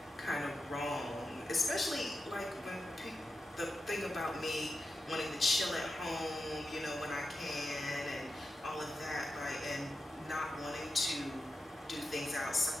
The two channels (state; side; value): normal; both; correlation 0.90